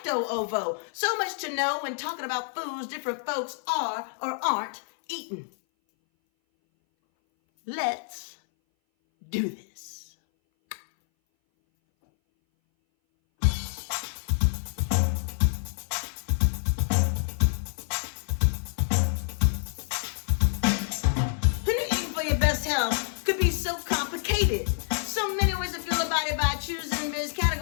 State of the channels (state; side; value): silent; right; 59 dB below the other